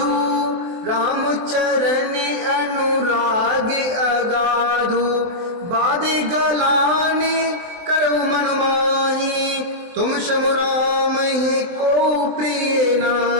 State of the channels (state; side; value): late; left; 23 ms